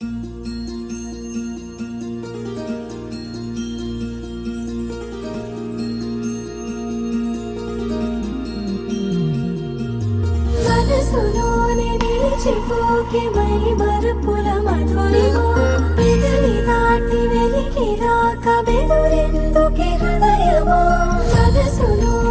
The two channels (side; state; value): both; identical; correlation 1.00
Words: మనసులోనే నిలిచిపోకే మై మరుపుల మధురిమో పెదవి దాటి వెలికి రాక బెదురెందుకే హృదయమో